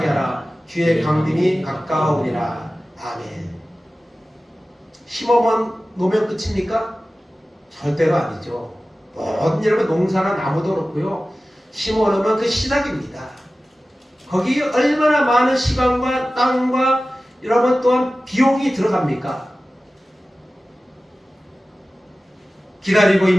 하라. 주의 강림이 가까우니라. 아멘. 심어만 놓으면 끝입니까? 절대로 아니죠. 모든 여러분 농사나 나무도 그렇고요. 심어놓으면 그 시작입니다. 거기에 얼마나 많은 시간과 땅과 여러분 또한 비용이 들어갑니까? 기다리고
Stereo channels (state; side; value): normal; both; correlation 0.96